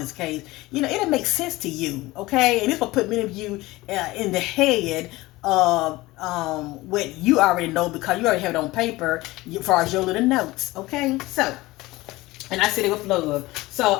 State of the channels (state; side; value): quieter; right; 19.6 dB